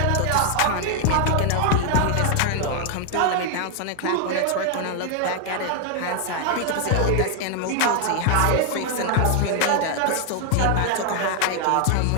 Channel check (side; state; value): both; different; correlation 0.00